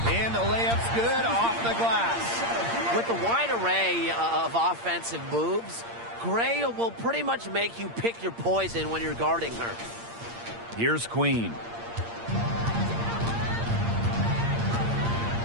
And the layup's good off the glass. With the wide array of offensive moves, Gray will pretty much make you pick your poison when you're guarding her. Here's Queen.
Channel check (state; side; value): late; left; 8.7 ms